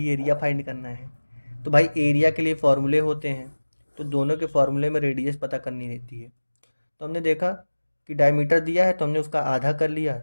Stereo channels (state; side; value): inverted; both; correlation -1.00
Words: एरिया फाइंड करना है। तो भाई एरिया के लिए फॉर्मूले होते हैं, तो दोनों के फॉर्मूले में रेडियस पता करनी रहती है। तो हमने देखा कि डायमीटर दिया है, तो हमने उसका आधा कर लिया,